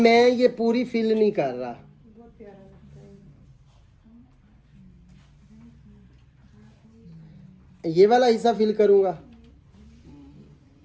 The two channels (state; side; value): identical; both; correlation 1.00